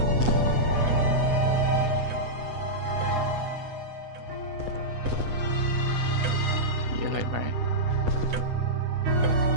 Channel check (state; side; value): late; left; 8.1 ms